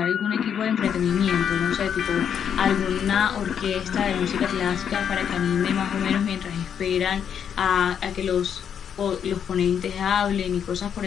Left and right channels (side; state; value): right; quieter; 8.2 dB